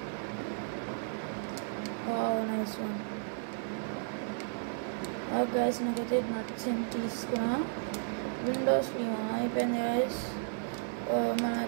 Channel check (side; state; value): left; silent; 55 dB below the other